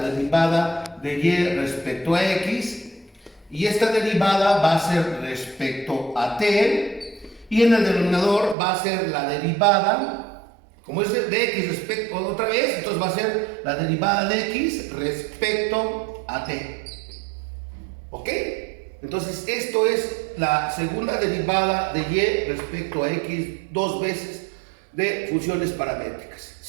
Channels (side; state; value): left; drops out; at 8.6 s